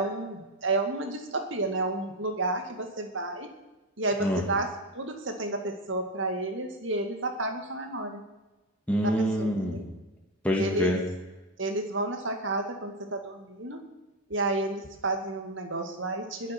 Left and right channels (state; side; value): normal; both; correlation 0.09